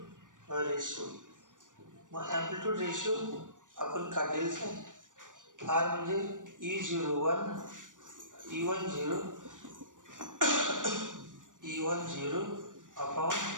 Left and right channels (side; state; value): left; late; 0.87 ms